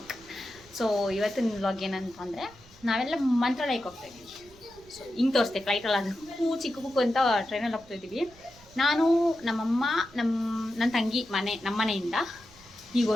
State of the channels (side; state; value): right; noise; rumble, 25 dB below the sound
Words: So ಇವತ್ತಿನ ವ್ಲಾಗ್ ಏನಂತಂದರೆ ನಾವೆಲ್ಲ ಮಂತ್ರಾಲಯಕ್ಕೆ ಹೋಗ್ತಾ ಇದ್ದೀವಿ. ಸೊ ಹಿಂಗೆ ತೋರಿಸ್ತೆ ಫ್ಲೈಟಲ್ಲಿ ಅದಕ್ಕೂ ಚಿಕ್ಕ ಕುಕ್ಕು ಅಂತ ಟ್ರೈನಲ್ಲಿ ಹೋಗ್ತಾ ಇದ್ದೀವಿ. ನಾನು ನಮ್ಮಮ್ಮ ನನ್ನ ತಂಗಿ ನಮ್ಮ ಮನೆಯಿಂದ ಈಗ